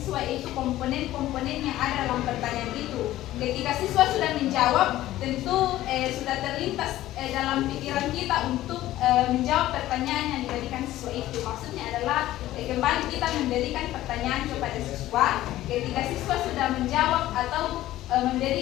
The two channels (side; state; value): right; quieter; 14.9 dB